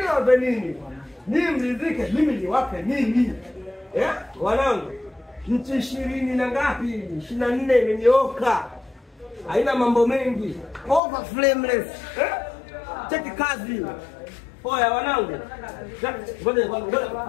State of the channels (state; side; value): drops out; right; at 11.0 s